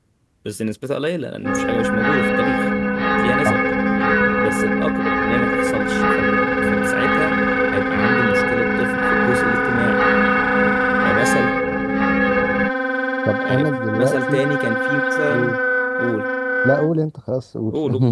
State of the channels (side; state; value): both; identical; correlation 1.00